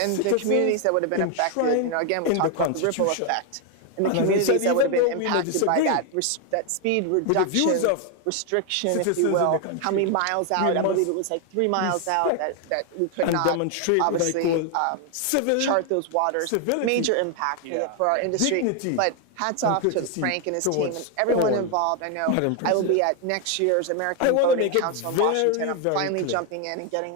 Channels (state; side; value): different; both; correlation 0.01